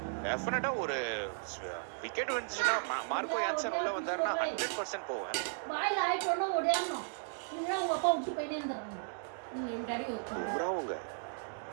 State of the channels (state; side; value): silent; left; digital silence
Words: டெஃபினட்டா ஒரு விக்கெட் வந்துச்சுன்னா மார்க்கோ யான்சன் உள்ள வந்தாருன்னா 100% போவேன்.